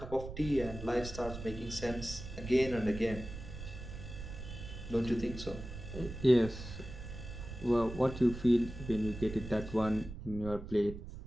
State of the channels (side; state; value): right; noise; rumble, 10 dB below the sound